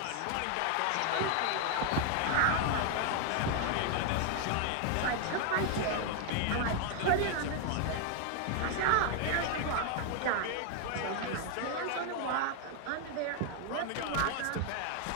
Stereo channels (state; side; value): different; both; correlation 0.00